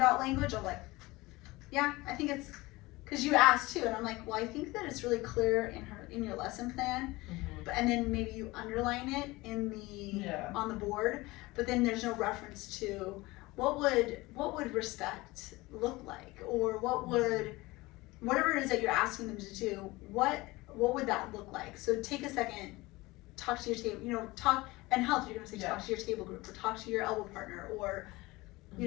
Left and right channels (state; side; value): quieter; right; 21.1 dB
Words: language, I'm like, yeah, I think it's, because you asked too, and I'm like, well, I think that it's really clear in your lesson plan, and then maybe you underline it in the on the board, but then there's no reference to what would respect look like, or whatever it is that you're asking them to do, what would that look like? So take a second, talk to your table, you know, talk, and health, you're gonna say talk to your table group, or talk to your elbow partner, or